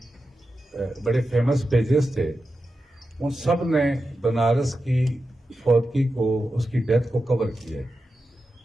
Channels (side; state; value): both; normal; correlation 0.90